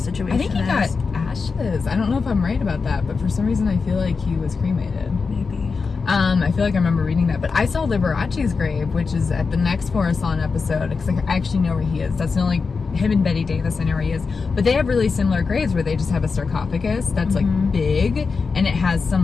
I think he is. got ashes. I don't know if I'm right about that, but for some reason I feel like he was cremated. Maybe. I feel like I remember reading that, but I saw Liberace's grave, which is at the next Forest Lawn episode, because I actually know where he is. That's the only, him and Betty Davis, I know where he is. But they have really similar graves where they just have a sarcophagus that's like big, and it has some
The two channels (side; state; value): right; quieter; 4.8 dB